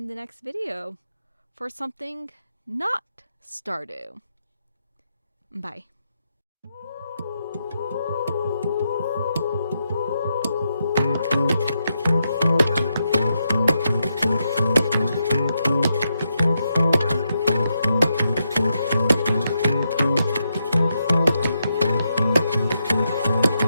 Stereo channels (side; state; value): both; inverted; correlation -0.83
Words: the next video for something not Stardew. Bye.